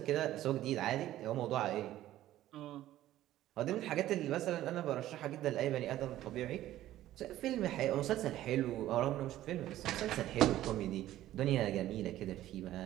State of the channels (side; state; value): left; quieter; 13.9 dB